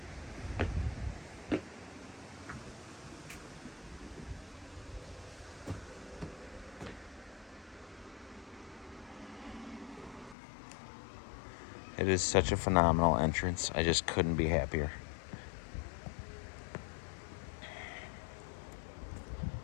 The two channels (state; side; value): drops out; right; at 10.4 s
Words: It is such a phenomenal entrance. I just couldn't be happier.